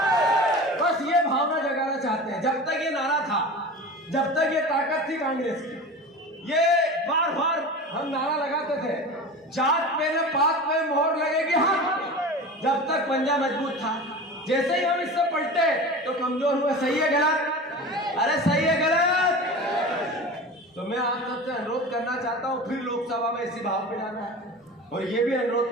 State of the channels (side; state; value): both; normal; correlation 0.32